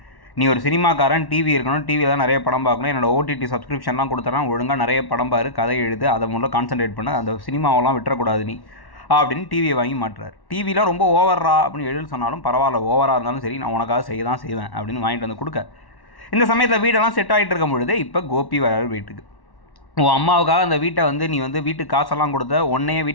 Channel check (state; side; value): late; right; 1.1 ms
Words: நீ ஒரு சினிமாக்காரன், டிவி இருக்கணும், டிவியில் தான் நிறைய படம் பார்க்கணும், என்னோட ஓடிடி சப்ஸ்கிரிப்ஷன்லாம் கொடுத்துட்றான், ஒழுங்காக நிறைய படம் பாரு, கதை எழுது, அதை மூலம் கான்சன்ட்ரேட் பண்ண, அந்த சினிமாவெல்லாம் விட்டுறக்கூடாது நீ அப்படின்னு டிவியை வாங்கி மாட்டுறாரு. டிவிலாம் ரொம்ப ஓவரா அப்படின்னு எழுதி சொன்னாலும் பரவாயில்ல, ஓவராக இருந்தாலும் சரி நான் உனக்காக செய்ய தான் செய்வேன் அப்படின்னு வாங்கிட்டு வந்து கொடுக்க. இந்த சமயத்தில் வீடெல்லாம் செட் ஆகிட்டு இருக்கும் பொழுது இப்போ கோபி வராரு வீட்டுக்கு. உன் அம்மாவுக்காக அந்த வீட்டை வந்து நீ வந்து வீட்டுக்கு காசெல்லாம் கொடுத்த, உன்னையே